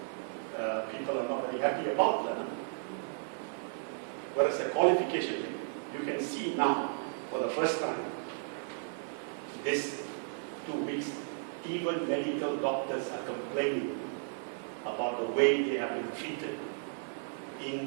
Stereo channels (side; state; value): left; silent; 55 dB below the other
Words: people are not very happy about. Whereas the qualification, you can see now, for the first time, this 2 weeks, even medical doctors are complaining about the way they have been treated